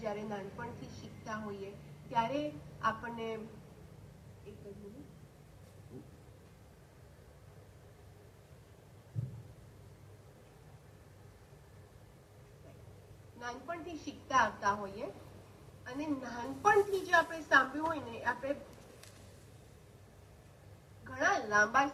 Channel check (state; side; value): identical; both; correlation 1.00